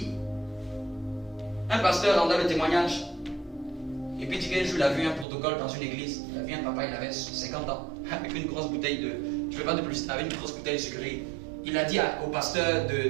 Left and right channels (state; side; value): drops out; left; at 5.2 s